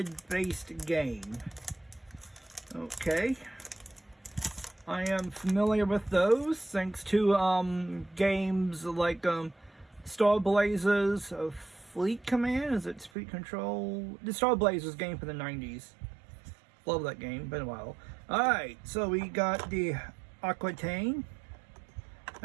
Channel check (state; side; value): drops out; left; at 13.1 s